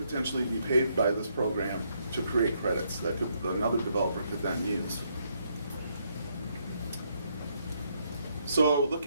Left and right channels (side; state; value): both; inverted; correlation -0.74